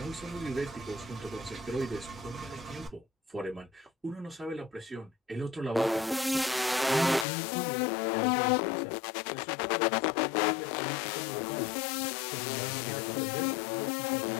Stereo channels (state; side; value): drops out; right; at 7.2 s